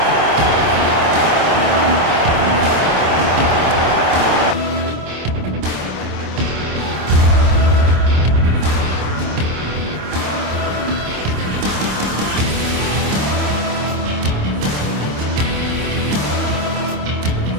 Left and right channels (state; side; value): late; left; 26 ms